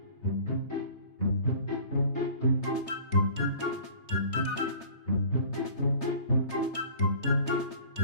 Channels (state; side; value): late; right; 3.3 ms